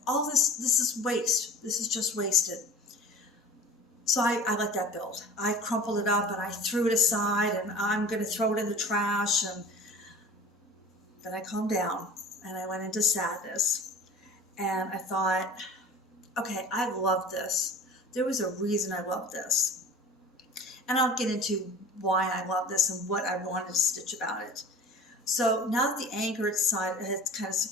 All this is waste. This is just wasted. So I let that build. I crumpled it up and I threw it aside, and I'm going to throw it in the trash. And then I calmed down and I went into sadness. And I thought, okay, I love this. There was a reason I loved this. And I'll get into why I love this and what I wanted to stitch about it. So now that the anger had kind of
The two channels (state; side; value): normal; both; correlation 0.41